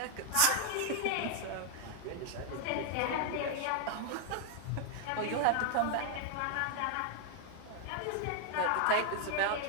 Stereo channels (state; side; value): different; both; correlation 0.00